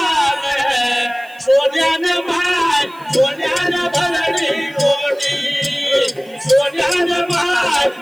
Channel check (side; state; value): right; noise; hiss, 27 dB below the sound